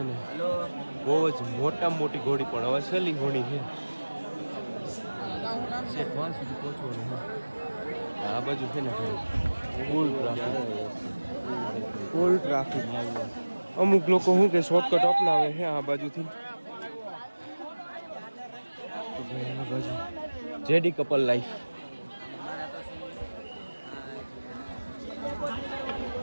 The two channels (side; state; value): both; inverted; correlation -1.00